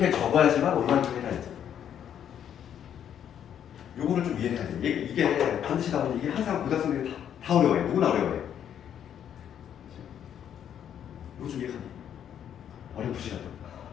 적어야지만 얼마만큼 해야지. 요거를 좀 이해해야 돼. 이게 반드시 나오는 이게 항상 고등학생들이 다 어려워해. 누구나 어려워해. 이거 좀 이해하니? 어렵으시라도.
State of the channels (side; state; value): right; quieter; 9.4 dB